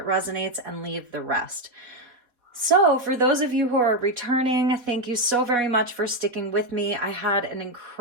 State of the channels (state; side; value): late; left; 4.0 ms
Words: resonates and leave the rest. So for those of you who are returning, thank you so very much for sticking with me. I had an